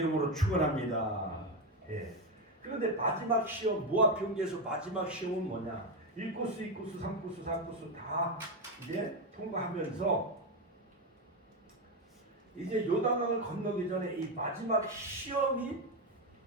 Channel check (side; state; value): both; normal; correlation 0.10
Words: 축원합니다. 그런데 마지막 시험, 모압 평지에서 마지막 시험은 뭐냐? 1코스, 2코스, 3코스, 4코스 다 이제 통과하면서 이제 요단강을 건너기 전에 이 마지막 시험이